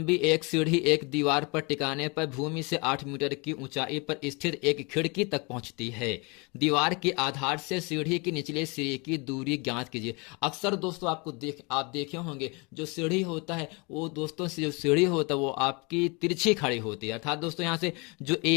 एक सीढ़ी एक दीवार पर टिकाने पर भूमि से 8 मीटर की ऊंचाई पर स्थित एक खिड़की तक पहुंचती है। दीवार के आधार से सीढ़ी की निचले सिरे की दूरी ज्ञात कीजिए। अक्सर दोस्तों आप देखे होंगे जो सीढ़ी होता है वो दोस्तों जो सीढ़ी होता है वो आपकी तिरछी खड़ी होती है। अर्थात दोस्तों यहाँ से जो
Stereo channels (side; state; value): right; quieter; 29.6 dB